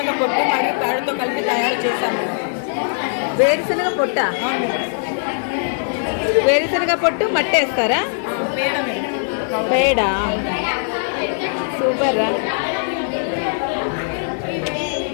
పొట్టు మరియు పేడతో కలిపి తయారు చేస్తాం మేడం. వేరుశనగ పొట్ట? వేరుశనగ పొట్టు మట్టి వేస్తారా? పేడ మేడం. పేడ. సూపర్.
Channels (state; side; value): silent; right; 61 dB below the other